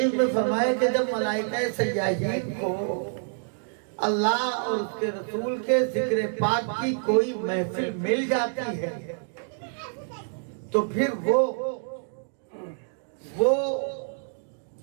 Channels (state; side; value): silent; left; digital silence